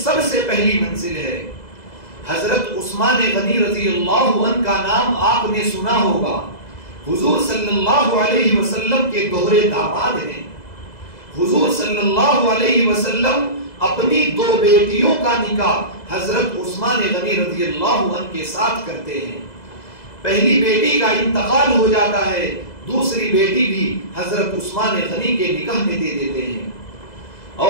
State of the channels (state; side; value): late; right; 2.0 ms